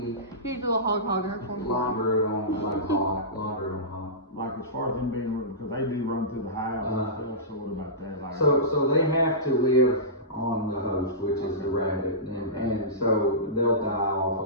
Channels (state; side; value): normal; both; correlation -0.19